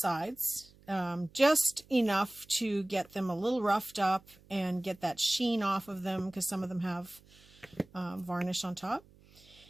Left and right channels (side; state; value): right; noise; hum, 27 dB below the sound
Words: just enough to get them a little roughed up and get that sheen off of them, because some of them have varnish on top.